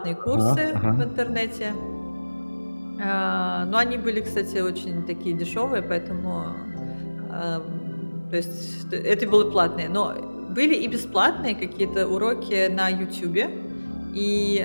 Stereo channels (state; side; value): inverted; both; correlation -1.00